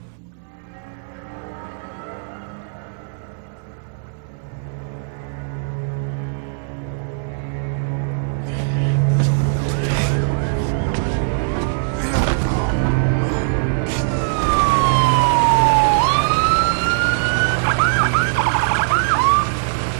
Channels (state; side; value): silent; left; digital silence